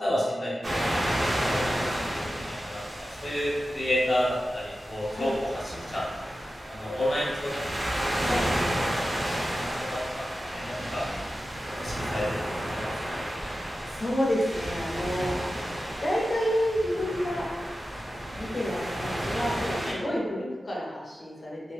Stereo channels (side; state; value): both; normal; correlation 0.93